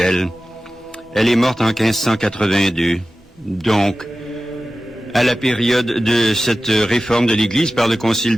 Elle est morte en 1582, donc, à la période de cette réforme de l'Église par le Concile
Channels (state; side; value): normal; both; correlation 0.95